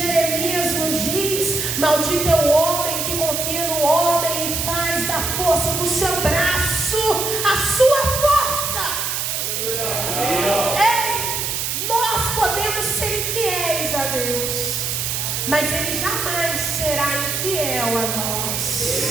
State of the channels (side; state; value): right; noise; hiss, 1 dB below the sound